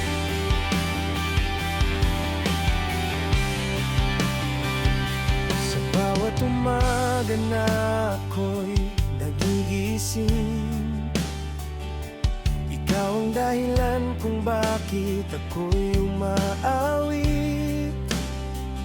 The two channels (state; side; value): identical; both; correlation 1.00